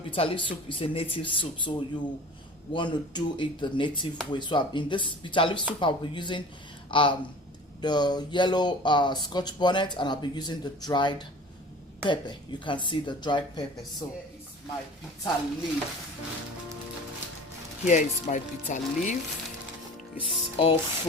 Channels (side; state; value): both; normal; correlation 0.42